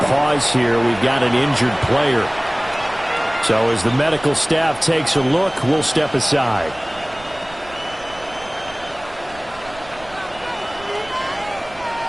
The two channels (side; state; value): right; noise; rumble, 22 dB below the sound